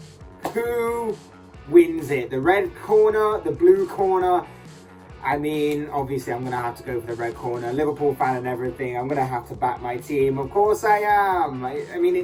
Who wins it? The red corner, the blue corner? I mean, obviously I'm going to have to go for the red corner. Liverpool fan and everything. I'm going to have to back my team. Of course I am. I mean,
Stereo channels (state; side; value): identical; both; correlation 1.00